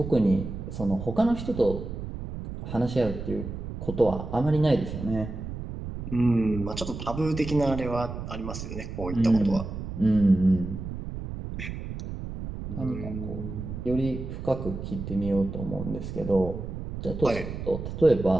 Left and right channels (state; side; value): noise; right; rumble, 7 dB below the sound